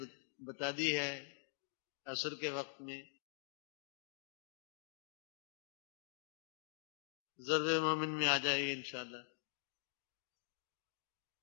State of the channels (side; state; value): right; silent; digital silence